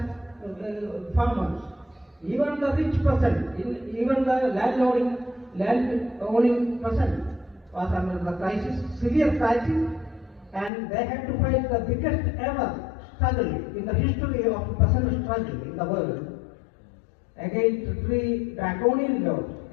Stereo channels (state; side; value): drops out; right; at 10.7 s